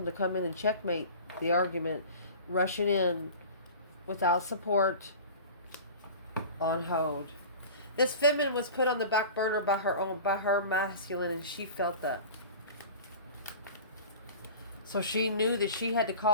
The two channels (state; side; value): inverted; both; correlation -0.38